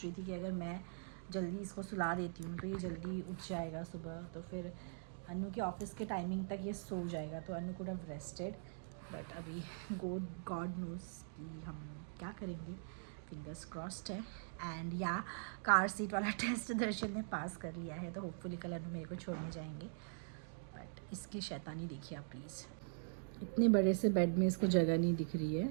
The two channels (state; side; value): silent; left; digital silence